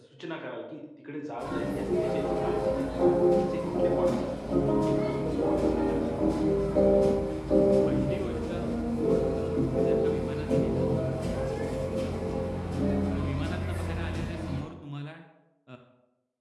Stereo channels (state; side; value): identical; both; correlation 1.00